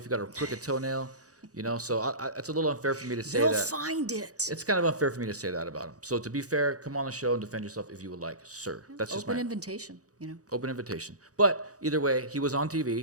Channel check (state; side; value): late; left; 0.66 ms